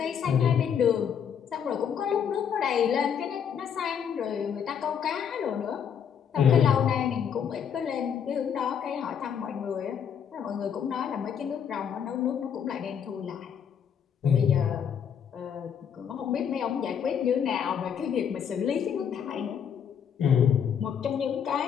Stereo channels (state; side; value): quieter; right; 7.9 dB